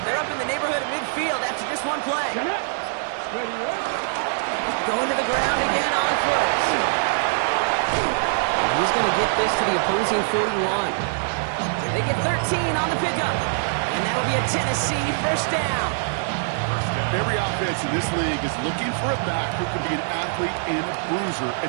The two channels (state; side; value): silent; left; digital silence